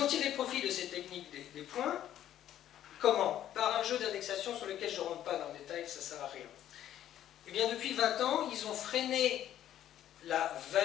ont tiré profit de cette technique des points. Comment? Par un jeu d'indexation sur lequel je ne rentre pas dans le détail, ça ne sert à rien. Eh bien, depuis 20 ans, ils ont freiné la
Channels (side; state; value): right; quieter; 11.6 dB